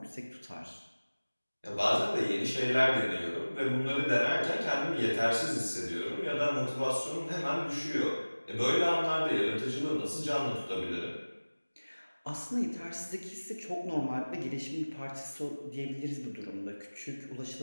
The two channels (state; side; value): inverted; both; correlation -1.00